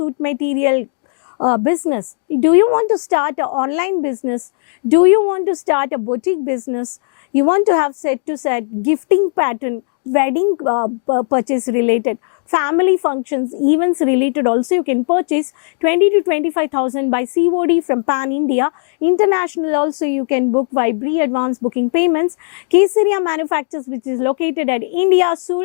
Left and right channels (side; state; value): right; silent; 66 dB below the other